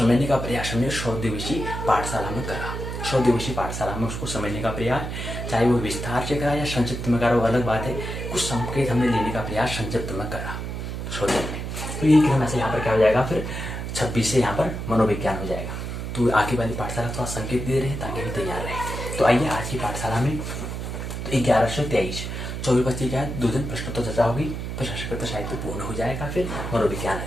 का प्रयास हमने 100 दिवसीय पाठशाला में करा। 100 दिवसीय पाठशाला में उसको समझने का प्रयास, चाहे वो विस्तार से करा या संक्षिप्त में करा, वो अलग बात है। कुछ संकेत हमने लेने का प्रयास संक्षिप्त में करा 100 दिन में। तो यही क्रम से यहाँ पर क्या हो जाएगा, फिर 26 से यहाँ पर मनोविज्ञान हो जाएगा। तो आगे वाली पाठशाला थोड़ा संकेत दे रहे हैं ताकि हम तैयार रहें। तो आइए आज की पाठशाला में तो 11 से 23 24 बच्चे क्या है, 2 दिन प्रश्नोत्तर चर्चा होगी, फिर संस्कृत साहित्य पूर्ण हो जाएगा, फिर मनोविज्ञान आ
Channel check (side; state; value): right; noise; hum, 5 dB below the sound